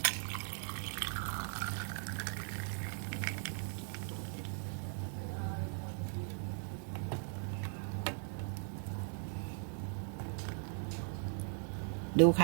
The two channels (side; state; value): left; silent; 52 dB below the other